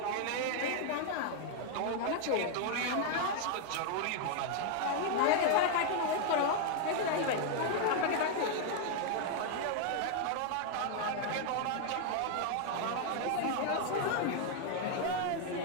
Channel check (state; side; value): different; both; correlation 0.00